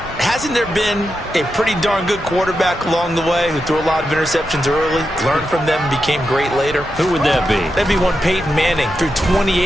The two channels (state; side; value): normal; both; correlation 0.87